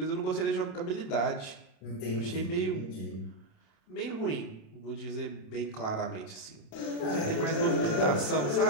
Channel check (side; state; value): right; late; 27 ms